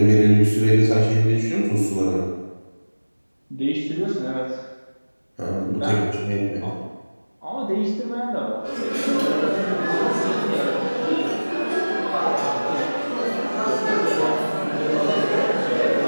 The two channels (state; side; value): inverted; both; correlation -1.00